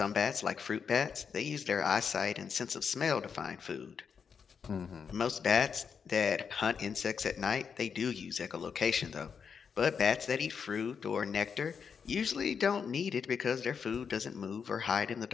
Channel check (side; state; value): right; quieter; 6.4 dB